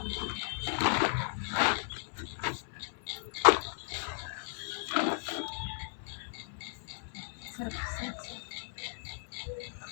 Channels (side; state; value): right; silent; 54 dB below the other